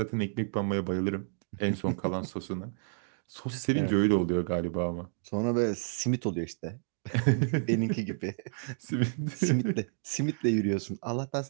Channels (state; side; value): silent; left; digital silence